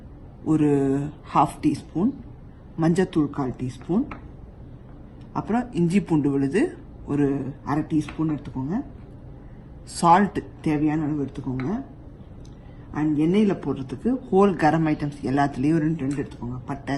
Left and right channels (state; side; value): identical; both; correlation 1.00